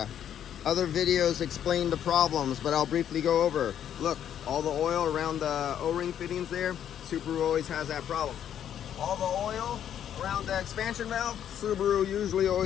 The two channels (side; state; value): right; quieter; 9.8 dB